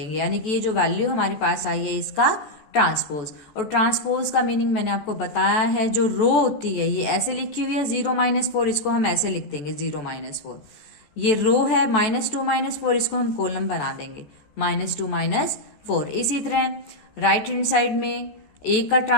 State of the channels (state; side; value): late; right; 14 ms